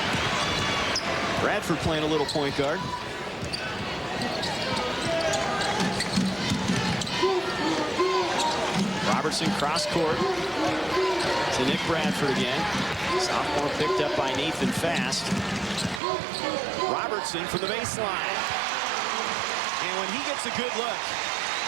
Bradford playing a little point guard. Robertson cross court to Nick Bradford again. Sophomore picked up by Nathan Fast. Robertson from the baseline. And when he gets a good look,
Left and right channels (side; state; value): left; drops out; at 16.0 s